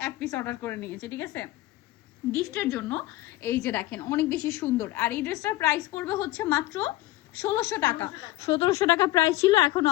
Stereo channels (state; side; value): quieter; right; 17.0 dB